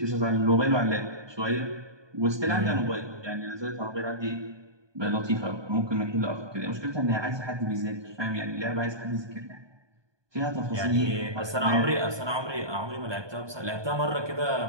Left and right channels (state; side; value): late; left; 1.2 ms